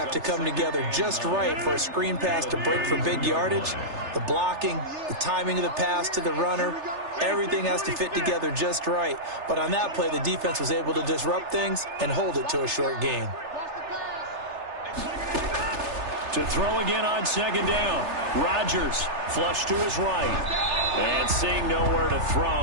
to come together just right for a screen pass to break for big yardage. The blocking, the timing of the pass to the runner, everything has to fit together just right. But on that play, the defense was able to disrupt things and hold it to a short gain. To throw again on 2nd down. Rodgers flush to his right. And seeing nowhere to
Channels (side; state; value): left; late; 3.3 ms